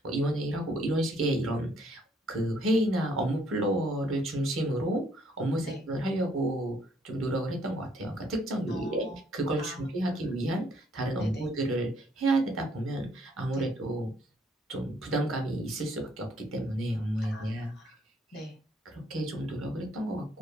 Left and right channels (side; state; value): both; normal; correlation 0.67